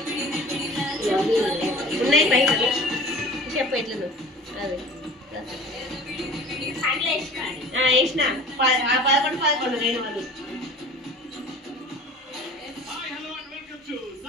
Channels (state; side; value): normal; both; correlation 0.43